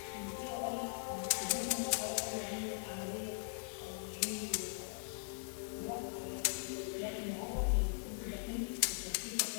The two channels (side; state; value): right; silent; digital silence